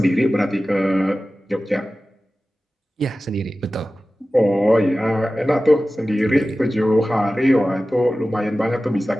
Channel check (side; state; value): both; normal; correlation 0.96